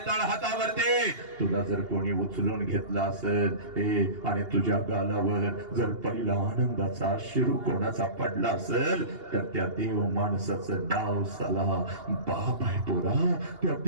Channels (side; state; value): left; late; 2.8 ms